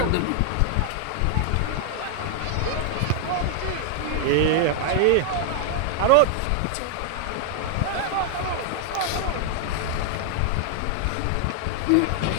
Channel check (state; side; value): different; both; correlation -0.01